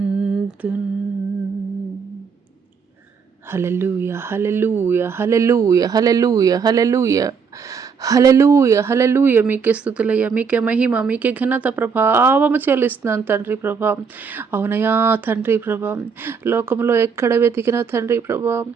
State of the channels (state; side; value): quieter; left; 6.0 dB